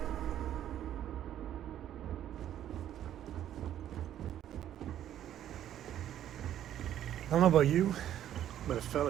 I don't know about you, but a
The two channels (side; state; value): left; quieter; 11.2 dB